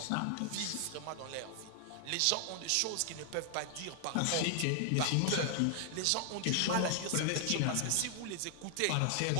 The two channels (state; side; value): different; both; correlation 0.00